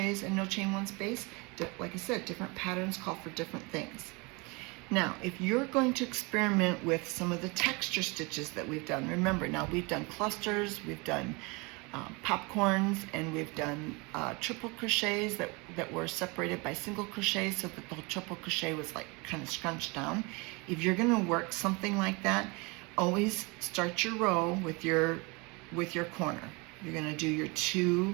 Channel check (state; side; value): quieter; left; 27.8 dB